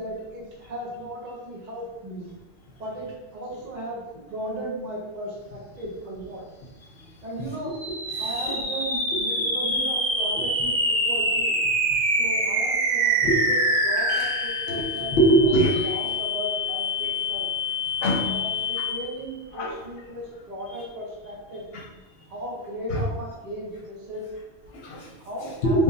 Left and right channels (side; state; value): both; normal; correlation 0.04